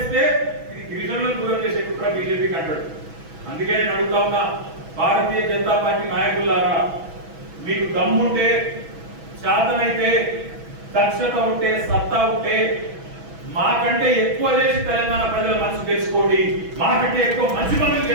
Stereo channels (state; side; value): late; left; 6.1 ms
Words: ఇది గిరిజనులను దూరం చేసే కుట్ర బీజేపీకి అంటాడు. అందుకే నేను అడుగుతా ఉన్నా, భారతీయ జనతా పార్టీ నాయకులారా, మీకు దమ్ముంటే, శాతనైతే, దక్షత ఉంటే, సత్తా ఉంటే మాకంటే ఎక్కువ చేసి తెలంగాణ ప్రజల మనసు తెలుసుకోండి, మాకంటే ఎక్కువ మంచి పనులు